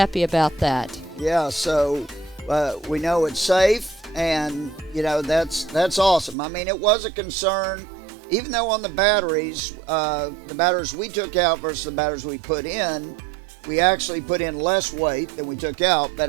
about that. Yeah, so we know it's safe, and that's awesome. I mean, it was a concern, even though on the batteries we took out versus the batteries we put in, we actually put in less weight than we took out.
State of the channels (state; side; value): drops out; left; at 6.4 s